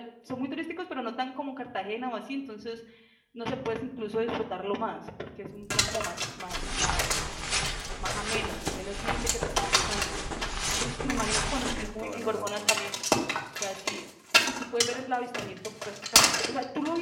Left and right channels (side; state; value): both; identical; correlation 1.00